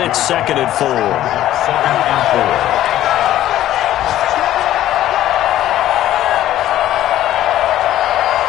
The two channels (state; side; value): quieter; right; 13.2 dB